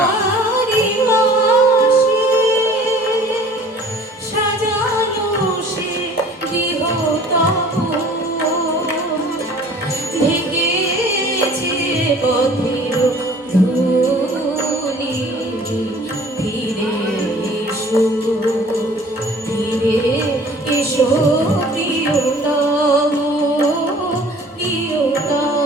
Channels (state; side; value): normal; both; correlation 0.50